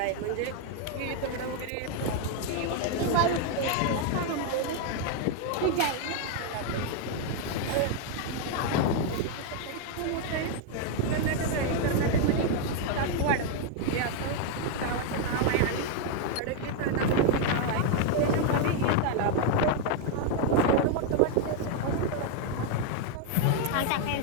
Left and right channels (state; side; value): different; both; correlation 0.01